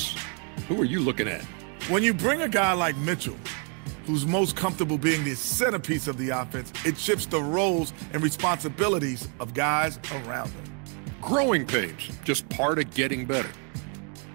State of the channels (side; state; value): left; quieter; 38.6 dB